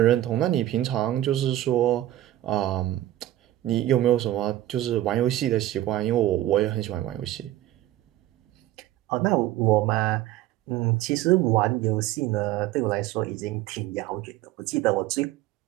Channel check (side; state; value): left; quieter; 14.4 dB